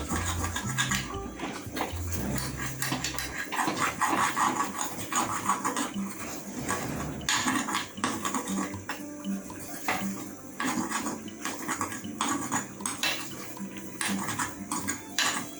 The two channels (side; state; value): right; noise; hum, 29 dB below the sound